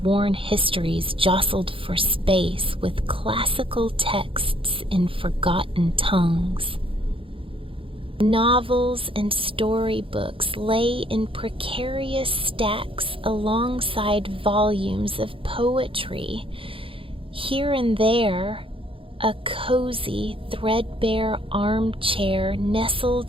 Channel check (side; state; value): left; late; 0.26 ms